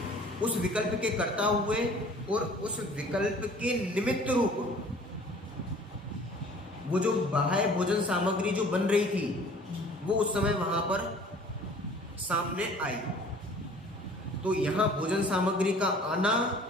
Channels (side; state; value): both; normal; correlation 0.50